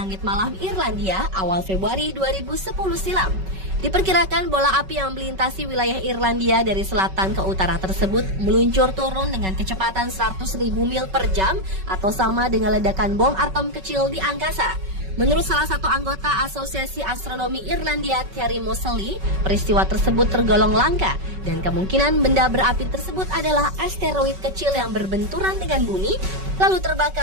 malam Irlandia awal Februari 2010 silam. Diperkirakan bola api yang melintasi wilayah Irlandia dari selatan ke utara tersebut meluncur turun dengan kecepatan 100.000 mil per jam atau sama dengan ledakan bom atom kecil di angkasa. Menurut salah satu anggota Asosiasi Astronomi Irlandia, Terry Moseley, peristiwa tersebut tergolong langka dan kemungkinan benda berapi tersebut adalah asteroid kecil yang berbenturan dengan bumi lalu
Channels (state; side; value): late; left; 5.3 ms